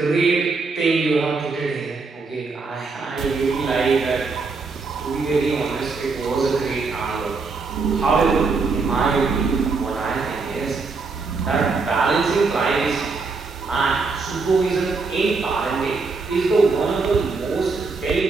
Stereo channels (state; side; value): quieter; left; 4.3 dB